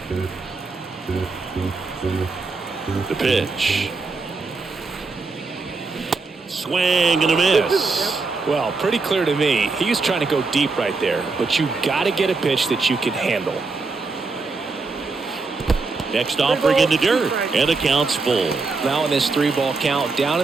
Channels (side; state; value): left; quieter; 4.0 dB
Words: The pitch. Swing and a miss. Well, pretty clear to me. He was trying to go deep right there, but you got to get a pitch that you can handle. Next offering in the dirt, and the count's full. Now in this 3-ball count, down